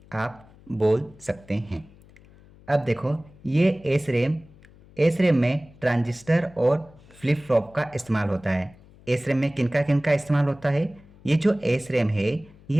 आप बोल सकते हैं। अब देखो, ये एस रैम में ट्रांजिस्टर और फ्लिप फ्लॉप का इस्तेमाल होता है। एस रैम में किनका इस्तेमाल होता है? ये जो एस रैम है,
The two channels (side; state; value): left; noise; hum, 25 dB below the sound